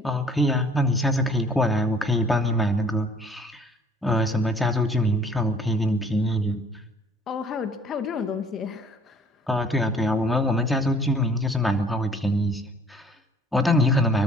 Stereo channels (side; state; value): both; normal; correlation 0.56